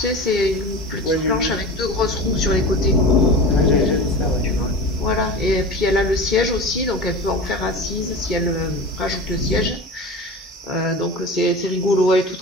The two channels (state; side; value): normal; both; correlation 0.31